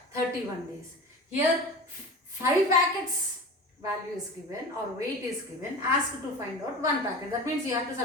31 days. Here 5 packets value is given or weight is given, asked to find out 1 packet. That means you have to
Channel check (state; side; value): normal; both; correlation 0.32